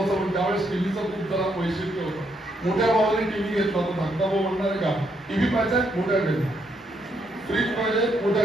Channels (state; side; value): normal; both; correlation 0.76